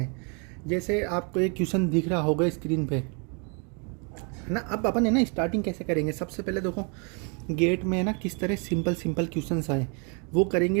जैसे आपको एक क्वेश्चन दिख रहा होगा स्क्रीन पे, है ना। अब अपन है ना स्टार्टिंग कैसे करेंगे, सबसे पहले देखो गेट में है ना किस तरह सिंपल सिंपल क्वेश्चंस आए वो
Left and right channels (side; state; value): left; quieter; 35.9 dB